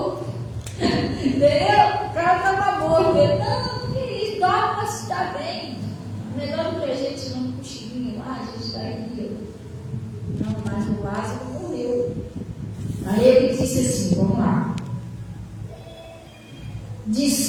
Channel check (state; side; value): identical; both; correlation 1.00